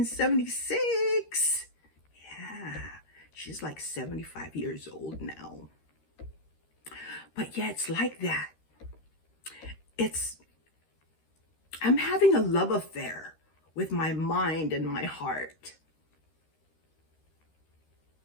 Yeah, she's like 75 years old now. But yeah, it's like that. I'm having a love affair with my mind and my heart.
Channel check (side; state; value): right; late; 13 ms